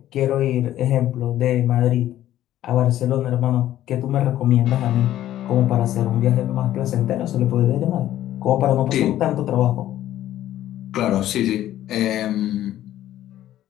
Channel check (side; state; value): right; quieter; 12.9 dB